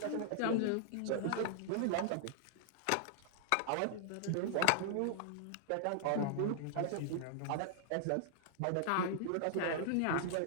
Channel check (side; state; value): both; different; correlation -0.01